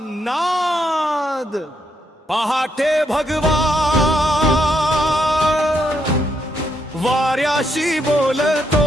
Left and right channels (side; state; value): both; normal; correlation 0.77